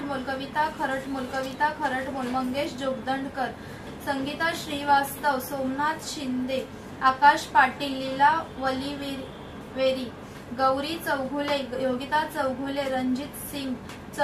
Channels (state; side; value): identical; both; correlation 1.00